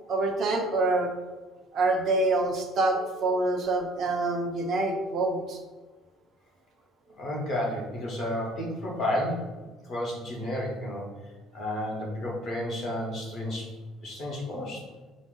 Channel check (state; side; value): normal; both; correlation 0.53